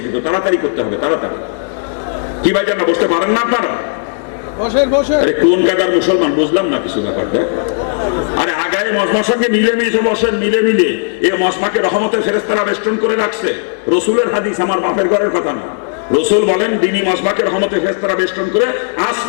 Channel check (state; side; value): silent; right; digital silence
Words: কিন্তু তাড়াতাড়ি করতে হবে, তাড়াতাড়ি। কি ভাই জানা বসতে পারেন না আপনারা? আরে কোন কাদার মুসলমান বুঝলাম না কিছু ব্যাপারটা। আরে আগায় মজমার সঙ্গে মিলে মিশে বসেন, মিলে মিলে। এই মজমাকে রহমতের ফেরেশতারা বেষ্টন করে রাখছে, রসুলের হাদিস, আমার বাপের ঘরের কথা না। রসুল বলেন দিনী মজমাকে রহমতের ফেরেশতারা বেষ্টন করে